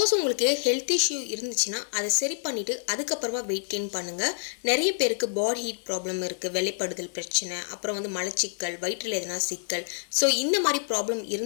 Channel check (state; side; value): silent; right; digital silence